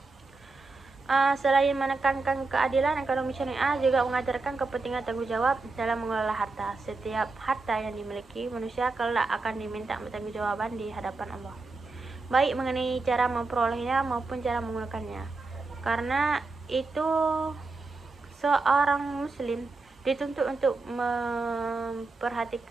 Selain menekankan keadilan, ekonomi syariah juga mengajarkan kepentingan tanggung jawab dalam mengelola harta. Setiap harta yang dimiliki manusia kelak akan diminta pertanggungjawaban di hadapan Allah, baik mengenai cara memperolehnya maupun cara menggunakannya. Karena itu, seorang muslim dituntut untuk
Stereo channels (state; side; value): quieter; left; 3.7 dB